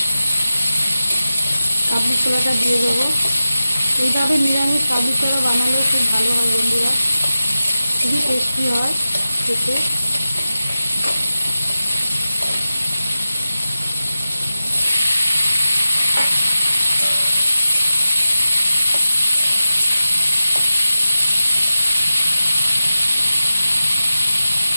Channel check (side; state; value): both; inverted; correlation -0.94